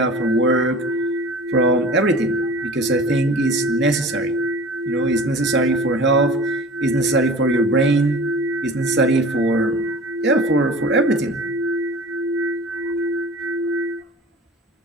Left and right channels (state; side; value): normal; both; correlation 0.40